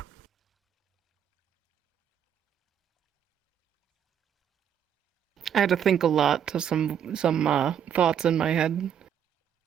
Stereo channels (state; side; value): quieter; left; 9.0 dB